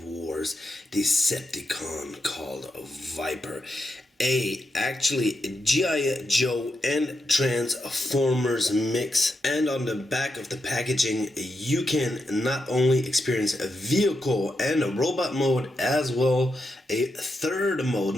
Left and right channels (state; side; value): normal; both; correlation 0.85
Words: Wars Decepticon called VIPER. Actually G.I.Joe and Transformers mix, and on the back of the packaging you can not only experience a vehicle and a robot mode, as well a third mode,